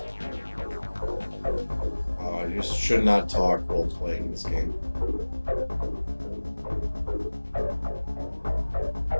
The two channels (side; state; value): both; inverted; correlation -1.00